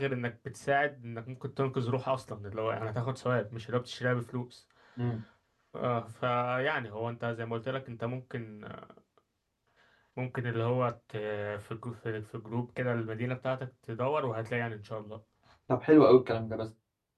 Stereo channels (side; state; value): both; identical; correlation 1.00